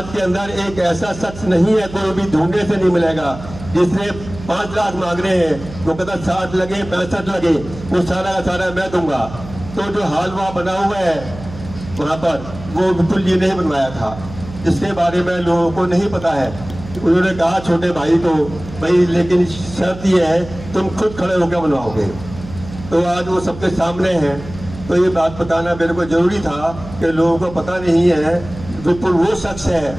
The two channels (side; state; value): right; noise; hum, 14 dB below the sound